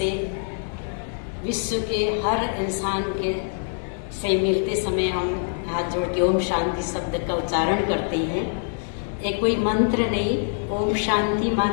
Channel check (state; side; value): silent; right; digital silence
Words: विश्व के हर इंसान के से मिलते समय हम हाथ जोड़ के ओम शांति शब्द का उच्चारण करते हैं। एक कोई मंत्र नहीं, ओम शांति